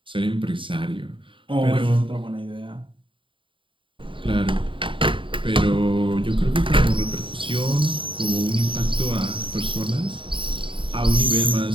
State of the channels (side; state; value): left; late; 0.25 ms